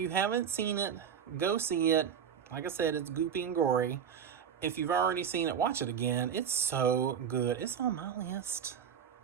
haven't seen it, go see it. Like I said, it's goopy and gory. If you've already seen it, watch it again. It's so good. It's on my list.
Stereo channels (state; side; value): quieter; left; 8.0 dB